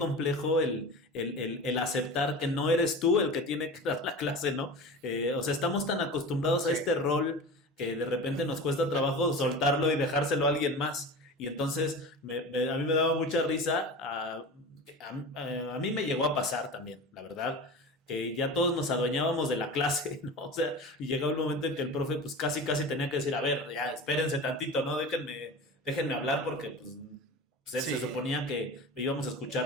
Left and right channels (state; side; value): normal; both; correlation 0.32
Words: el aceptar que no eres tú el que tiene que dar la clase, ¿no? O sea, estamos tan acostumbrados a este rol que de repente nos cuesta trabajo soltarlo y dejárselo a alguien más. Y entonces a mí me daba mucha risa, a mí me llegó a pasar también, la verdad, que ya todos nos adueñábamos de la clase, ¿no? O sea, y llegaba un momento en que el profe pues casi tenía que decir, a ver, ya espérense tantito, ¿no? Déjenme hablar porque pues sí, se suponía que íbamos a